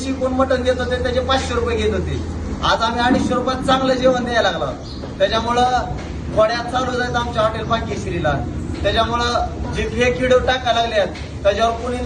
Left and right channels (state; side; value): identical; both; correlation 1.00